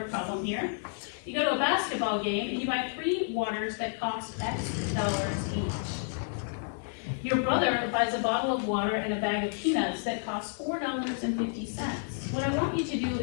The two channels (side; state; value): right; silent; 55 dB below the other